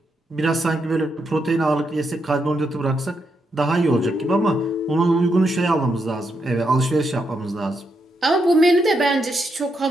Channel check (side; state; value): both; normal; correlation 0.81